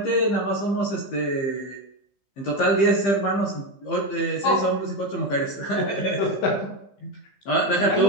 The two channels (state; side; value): late; right; 15 ms